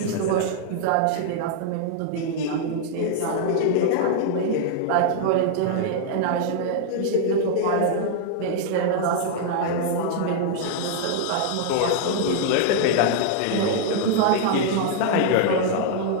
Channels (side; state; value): both; different; correlation -0.01